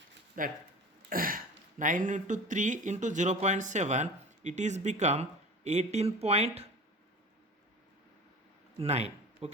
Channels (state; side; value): normal; both; correlation 0.37